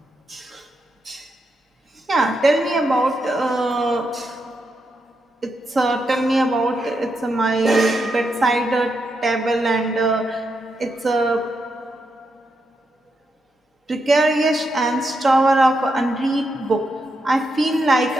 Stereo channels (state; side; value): normal; both; correlation 0.83